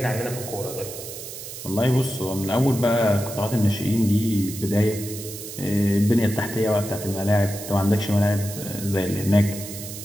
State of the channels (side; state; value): right; noise; hiss, 11 dB below the sound